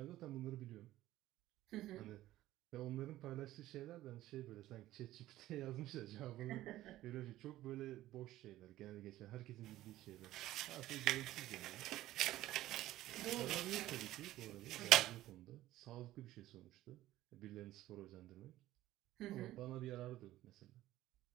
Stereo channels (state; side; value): quieter; left; 15.2 dB